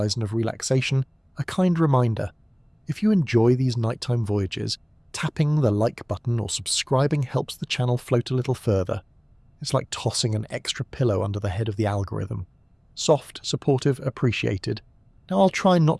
of relaxation, a kind reminder, if you enjoy these nighttime voyages, tapping the like button or subscribing helps the channel float a little further. It's like tossing an extra pillow under the head of the algorithm. Soft, supportive, appreciated. Now I'll try not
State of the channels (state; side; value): identical; both; correlation 1.00